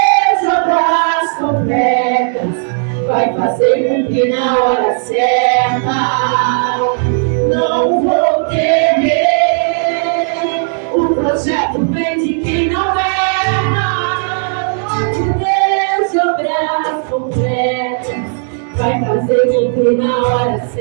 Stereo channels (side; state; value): left; silent; 67 dB below the other